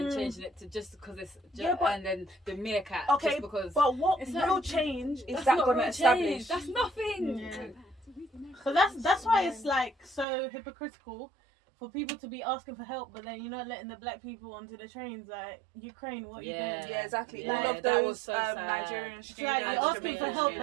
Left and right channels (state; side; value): drops out; left; at 10.2 s